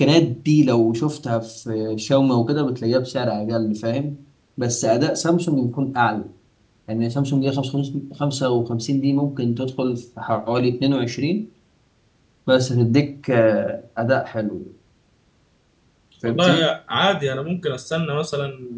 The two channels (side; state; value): both; identical; correlation 1.00